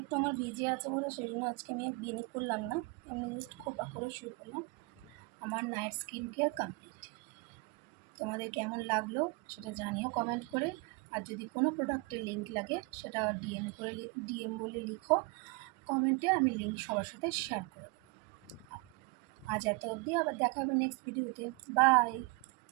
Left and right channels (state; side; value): quieter; left; 27.2 dB